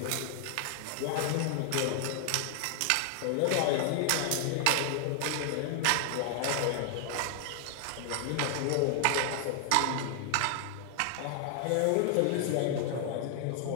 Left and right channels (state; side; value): different; both; correlation 0.00